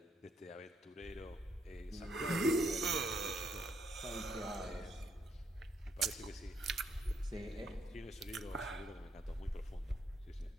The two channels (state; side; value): normal; both; correlation 0.73